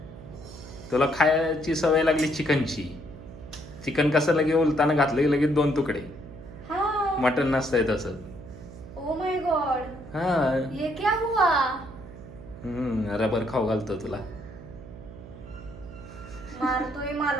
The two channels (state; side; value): noise; right; hum, 16 dB below the sound